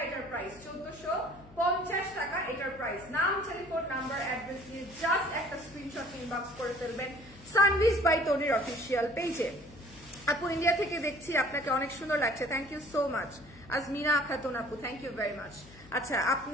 এটার প্রাইস, 1450 টাকা এটার প্রাইস। নাম, টেলিফোন নাম্বার, অ্যাড্রেস দিয়ে জাস্ট একটা স্ক্রিনশট ইনবক্স করে ফেলবেন সানভিজ বাই তনির অফিসিয়াল পেজে। আপু ইন্ডিয়া থেকে দেখছি, আপনাকে অনেক সুন্দর লাগছে, thank you so much. Azmina Khatun আপু, থ্যাংক ইউ ভেরি মাচ। আচ্ছা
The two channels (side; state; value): left; noise; hum, 21 dB below the sound